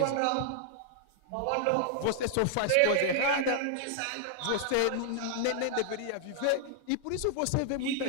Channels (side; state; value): both; different; correlation -0.01